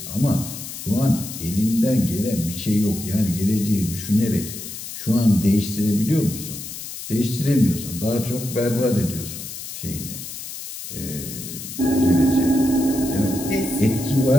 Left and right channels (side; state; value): left; noise; hiss, 10 dB below the sound